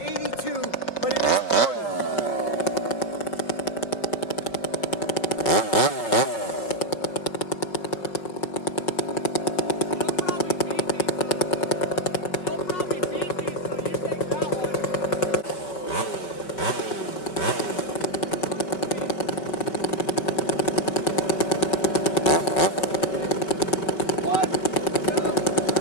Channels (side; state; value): right; late; 5.1 ms